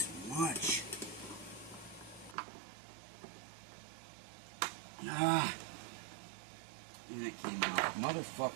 much? And it came out.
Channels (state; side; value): drops out; left; at 2.4 s